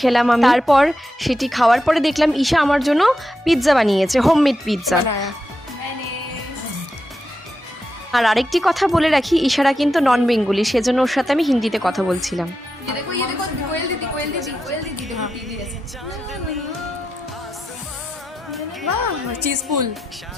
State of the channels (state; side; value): normal; both; correlation 0.87